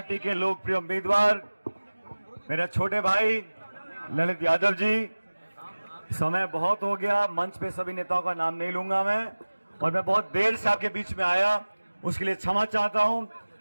के लोकप्रिय उम्मीदवार मेरे छोटे भाई ललित यादव जी, समय बहुत हो गया, मंच पे सभी नेताओं का नाम नहीं लूंगा मैं, और मैं बहुत देर से आपके बीच में आया, उसके लिए क्षमा चाहता हूं।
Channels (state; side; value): inverted; both; correlation -1.00